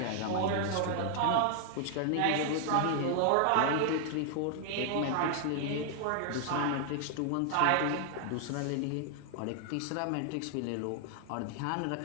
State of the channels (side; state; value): both; different; correlation 0.00